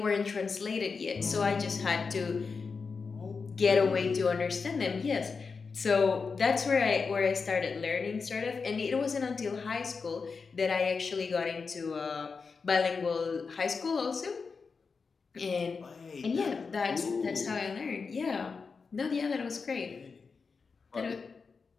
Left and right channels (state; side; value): quieter; right; 5.0 dB